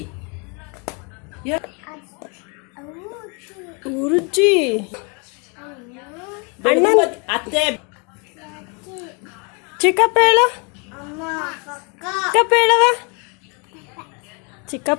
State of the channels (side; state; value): right; quieter; 33.6 dB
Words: ಊರಜ್ಜಿ, ಅಣ್ಣ, ಅತ್ತೆ, ಚಿಕ್ಕಪ್ಪ ಹೇಳು, ಚಿಕ್ಕಪ್ಪ ಹೇಳವ,